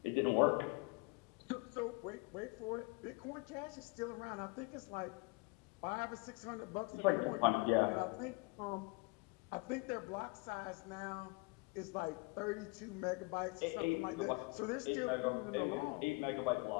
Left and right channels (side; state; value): right; quieter; 27.4 dB